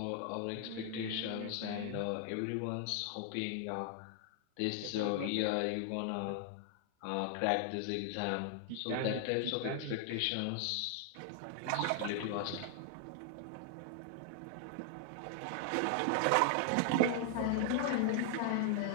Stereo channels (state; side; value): different; both; correlation 0.00